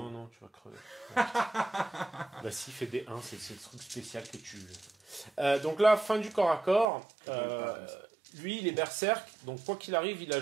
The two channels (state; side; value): drops out; left; at 6.9 s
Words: tu vas crever. Bah si, fait des 1, c'est le truc spécial que tu veux. Donc là, fin du corps à corps. Lui, il est berserk, donc quoi qu'il arrive, il